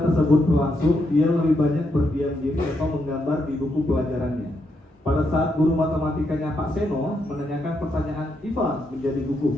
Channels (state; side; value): normal; both; correlation 0.80